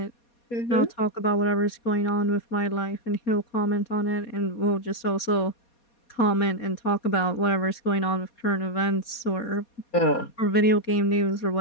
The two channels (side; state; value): right; late; 4.2 ms